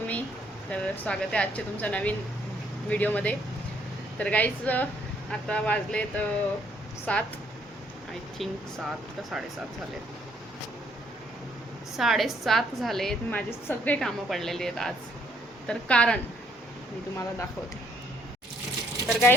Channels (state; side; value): normal; both; correlation 0.68